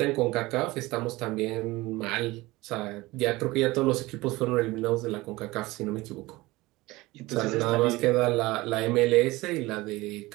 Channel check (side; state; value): left; quieter; 20.3 dB